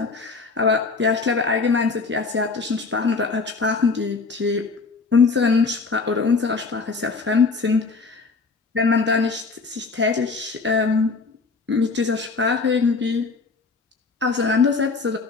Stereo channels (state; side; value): quieter; right; 4.4 dB